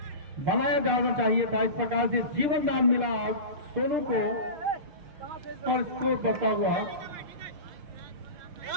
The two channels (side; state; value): left; late; 6.2 ms